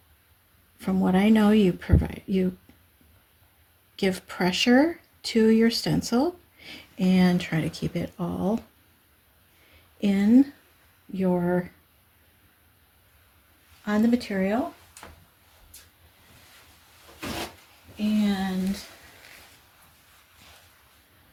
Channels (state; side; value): identical; both; correlation 1.00